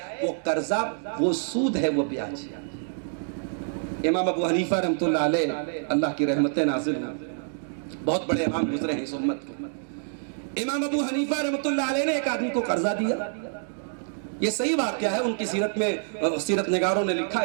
وہ قرضہ، وہ سود ہے، وہ بیاج ہے۔ امام ابو حنیفہ رحمۃ اللہ علیہ، اللہ کی رحمتیں نازل ہوں، بہت بڑے امام گزرے ہیں اس امت کے۔ امام ابو حنیفہ رحمۃ اللہ علیہ نے ایک آدمی کو قرضہ دیا، یہ صحیح واقعہ ہے، ان کی سیرت میں سیرت نگاروں نے لکھا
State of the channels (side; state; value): left; silent; digital silence